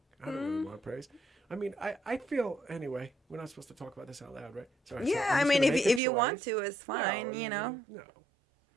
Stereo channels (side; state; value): left; drops out; at 6.0 s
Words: I don't really want praise. I mean, I feel, anyway, we're not supposed to talk about this out loud, right? Sorry, yeah, I mean, if you want to, it's fine, No.